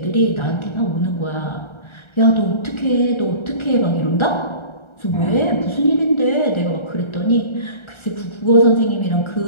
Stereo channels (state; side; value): late; right; 1.4 ms